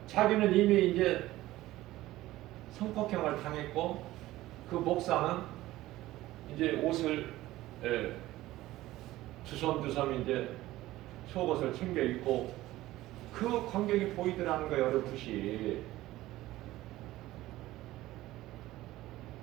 자기는 이미 이제 성폭행을 당했고 그 목사는 이제 옷을 두섬두섬 이제 속옷을 챙겨 입고 그 광경이 보이더라는 거예요. 어렴풋이.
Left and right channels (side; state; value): left; quieter; 16.4 dB